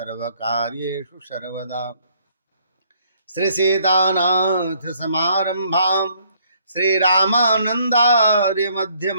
सर्वदा। श्री सीतानाथ समारंभां श्री रामानंदार्य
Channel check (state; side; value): inverted; both; correlation -0.66